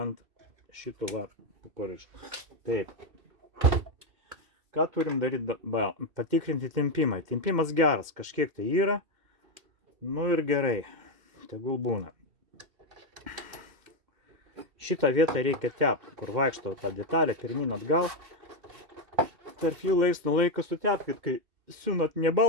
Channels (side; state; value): left; late; 2.7 ms